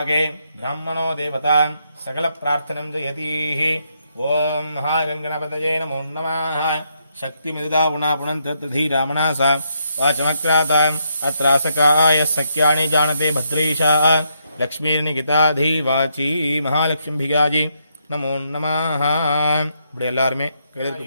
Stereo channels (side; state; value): both; inverted; correlation -0.77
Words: ब्राह्मणो देवता सकल प्रार्थनं जयतीः ओम महागणपतये नमो नमः शक्तिमिदुदा पुनन्तधीरामनासा वाचमक्राताम् अत्रासकाय सख्यानि जानते भद्रेशा लक्ष्मीर्निकिताधी वाची महालक्ष्मीभिगाजी नमो नमः இப்படி எல்லாருமே கையில